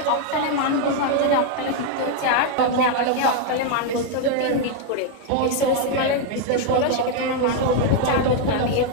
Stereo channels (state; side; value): different; both; correlation 0.00